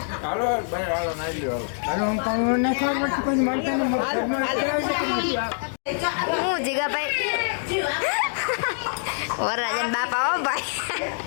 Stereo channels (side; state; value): right; silent; digital silence